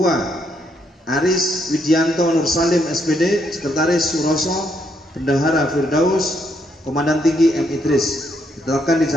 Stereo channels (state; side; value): normal; both; correlation 0.74